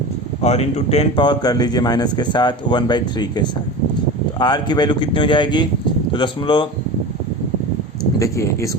और इंटू 10 पावर कर लीजिए माइनस के साथ 1/3 के साथ। तो आर की वैल्यू कितनी हो जाएगी, तो दशमलव देखिए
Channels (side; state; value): both; normal; correlation 0.30